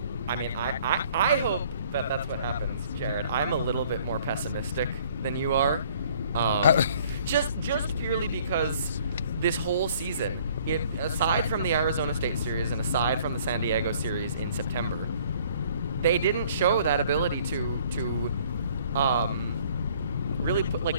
I mean, I hope that that's what happens, Jared. I'm a little bit more pessimistic than you are. Just purely because this whole season, aside from the Arizona State series and aside from the San Diego series in September, they didn't show that ability to really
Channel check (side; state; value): both; inverted; correlation -0.58